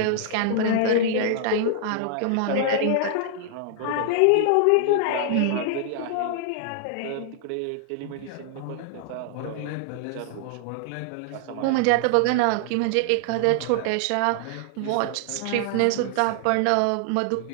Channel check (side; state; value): both; different; correlation -0.01